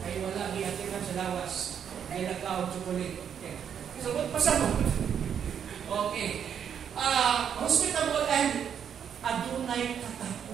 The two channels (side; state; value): left; quieter; 8.2 dB